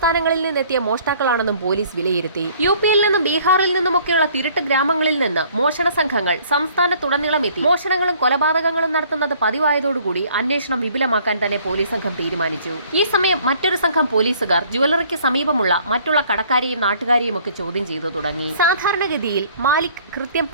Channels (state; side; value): inverted; both; correlation -0.57